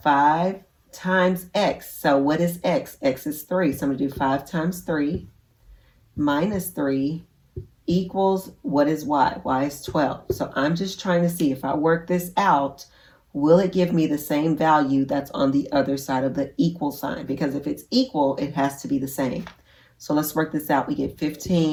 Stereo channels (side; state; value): both; identical; correlation 1.00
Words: 5 times x. So what is x? X is 3. So I'm going to do 5 times 3 minus 3 equals, what is y? Y is 12. So I'm just trying to see if I work this out, will it give me the same value that's on the other side of the equal sign? Because if it's equal, it has to be the same. So let's work this out. We get